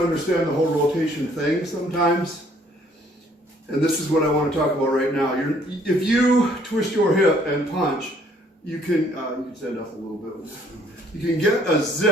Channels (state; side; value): normal; both; correlation 0.62